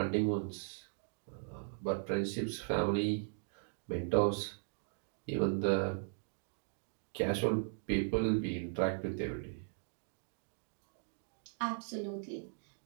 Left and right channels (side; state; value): left; silent; digital silence